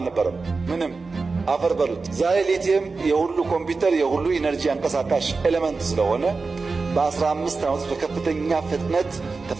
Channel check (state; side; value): quieter; left; 4.2 dB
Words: ምንም አፈር በሉት። ዛሬ ሊቲየም የሁሉ ኮምፒውተር የሁሉ ኢነርጂ አንቀሳቃሽ ኤሌመንት ስለሆነ በ15 ዓመት በከፍተኛ ፍጥነት